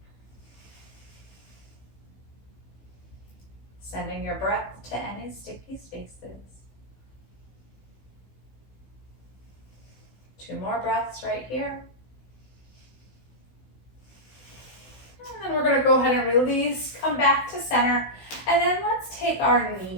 Sending your breath to any sticky spaces. 2 more breaths right here. And then we're going to go ahead and release, come back to center, and then let's take our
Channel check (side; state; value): right; late; 16 ms